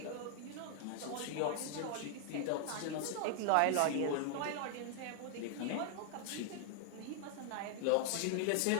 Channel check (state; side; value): different; both; correlation 0.00